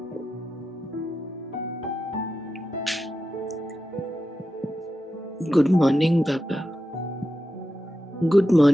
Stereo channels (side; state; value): both; normal; correlation 0.90